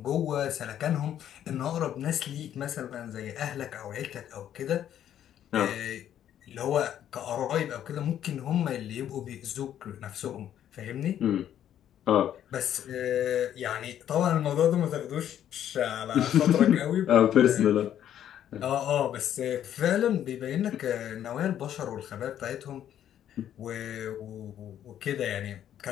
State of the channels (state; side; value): quieter; right; 10.6 dB